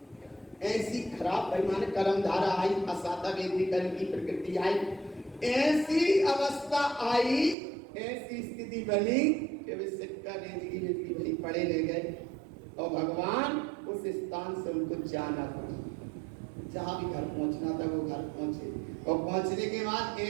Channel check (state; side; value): drops out; left; at 7.6 s